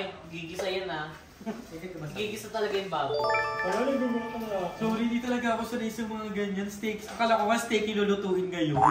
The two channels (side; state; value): both; identical; correlation 1.00